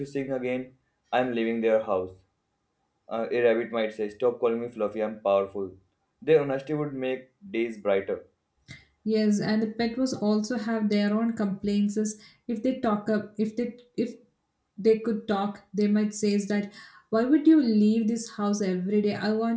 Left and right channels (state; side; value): identical; both; correlation 1.00